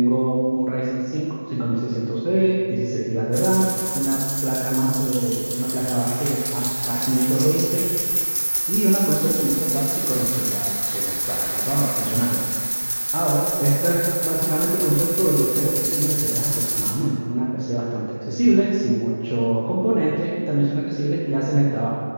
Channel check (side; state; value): both; inverted; correlation -1.00